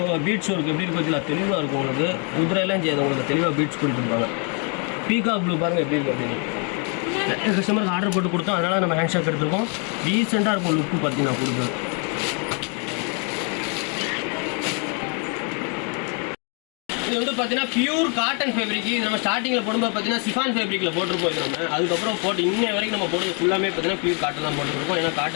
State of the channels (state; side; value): quieter; right; 37.6 dB